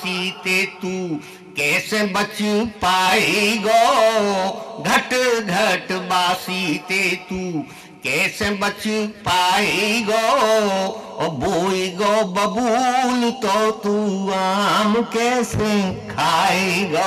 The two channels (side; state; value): both; identical; correlation 1.00